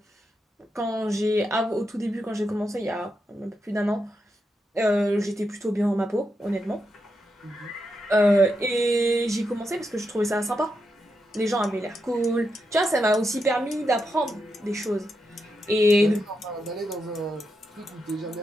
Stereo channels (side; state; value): both; normal; correlation 0.85